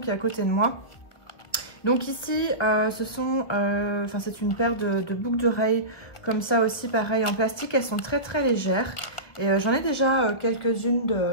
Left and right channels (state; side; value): late; right; 1.6 ms